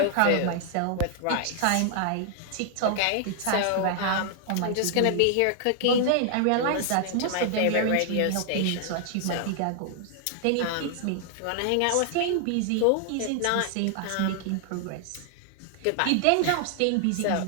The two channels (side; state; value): both; different; correlation 0.00